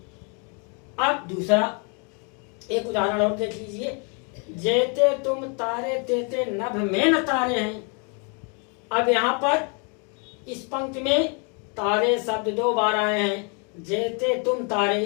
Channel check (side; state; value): right; quieter; 36.7 dB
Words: अब दूसरा एक उदाहरण और देख लीजिए, जेते तुम तारे तेते नभ में न तारे हैं। अब यहाँ पर इस पंक्ति में तारे शब्द दो बार आए हैं, जेते तुम तारे,